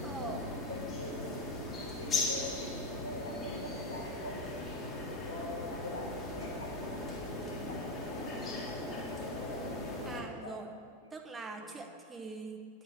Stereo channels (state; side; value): normal; both; correlation 0.09